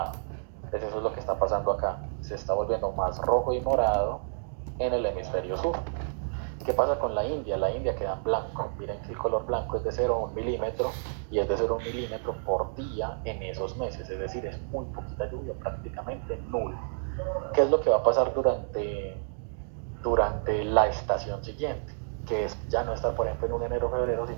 Entonces, eso es lo que está pasando acá. Se está volviendo más rojo y morado en el hemisferio sur. ¿Qué pasa con la India? La India queda en blanco. Miren que el color blanco es de 0 a 1 milímetro y es de 0 a 1 milímetro por día en esos meses. Es decir, es muy poquita lluvia, prácticamente nulo. ¿Qué es lo que va a pasar durante la estación siguiente? Que es ya no estar, por ejemplo, en un enero o febrero,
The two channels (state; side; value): silent; left; digital silence